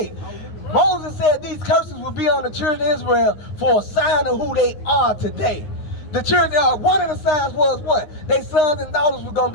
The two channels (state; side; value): late; right; 9.7 ms